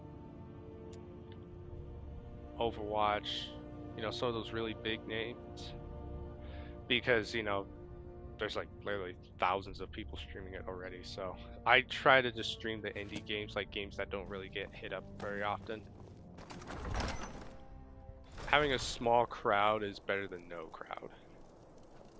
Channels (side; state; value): both; identical; correlation 1.00